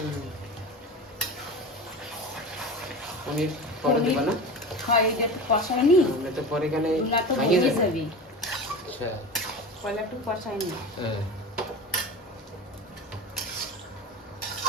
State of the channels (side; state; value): both; normal; correlation 0.30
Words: পনির পরে দেবা না? হয় এটা একটু কষাই নি, আমরা তো পরে গেলে না তো ভাঙিয়ে ভেঙে যাবে। যাবি। আচ্ছা পয়লা একটু কষাই নি। হ্যাঁ